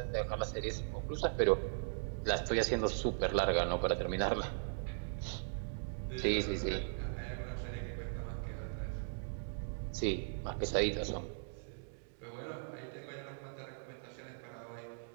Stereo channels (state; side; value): silent; left; digital silence